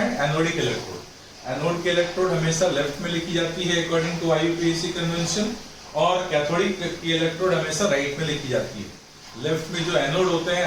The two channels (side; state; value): both; identical; correlation 1.00